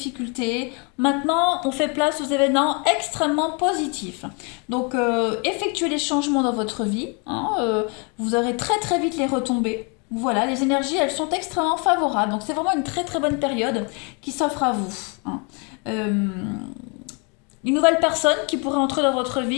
Maintenant, on fait place aux événements extrêmement positifs. Donc, effectuez les changements dans votre vie. Hein, vous aurez très très vite les retombées. Voilà, les énergies, elles sont extrêmement favorables. Donc, c'est vraiment une très très bonne période qui s'offre à vous. Hein. Une nouvelle personne qui pourrait entrer dans votre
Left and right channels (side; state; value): right; quieter; 34.2 dB